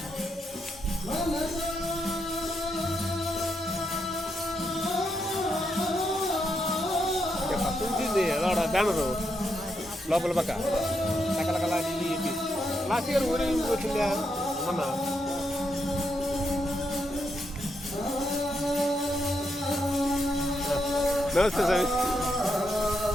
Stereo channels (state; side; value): normal; both; correlation 0.81